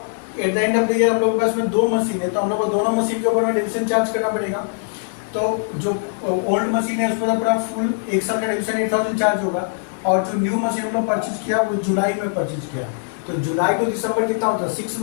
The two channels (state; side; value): silent; right; digital silence